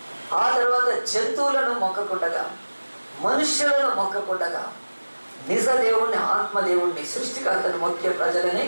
ఆ తర్వాత జంతువులను మొక్కకుండగా, మనుష్యులను మొక్కకుండగా నిజ దేవుణ్ణి ఆత్మదేవుణ్ణి సృష్టికర్తను మొక్కే ప్రజలనే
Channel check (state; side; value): inverted; both; correlation -1.00